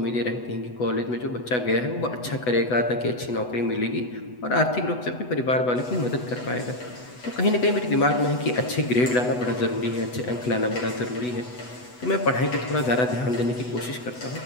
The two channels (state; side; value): late; right; 8.1 ms